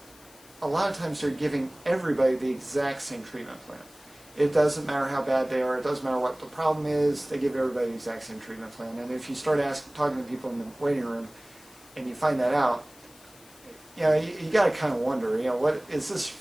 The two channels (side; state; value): left; noise; hiss, 24 dB below the sound